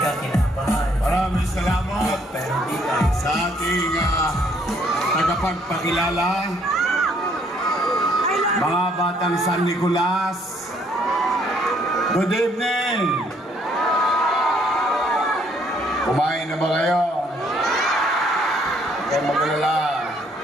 kinabahan. Maraming salamat Pero di tayo sa ating tagapagpakilala, mga batang San Nicolas. Good evening! Kumain na ba kayo? Huwag kayong mag-alala.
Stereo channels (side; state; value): both; normal; correlation 0.66